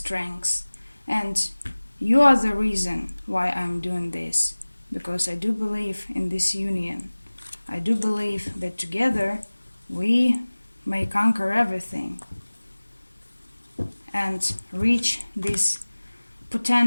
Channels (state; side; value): inverted; both; correlation -1.00